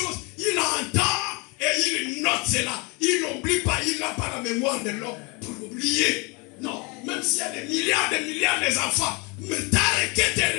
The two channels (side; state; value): right; quieter; 29.1 dB